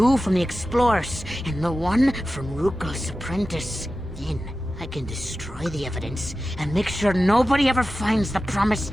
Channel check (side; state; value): both; normal; correlation 0.94